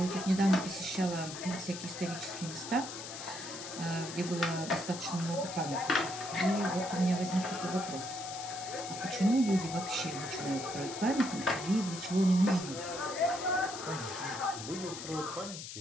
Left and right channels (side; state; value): left; noise; hiss, 9 dB below the sound